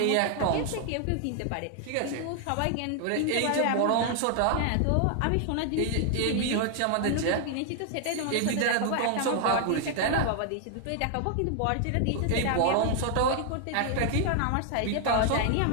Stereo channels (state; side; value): different; both; correlation 0.00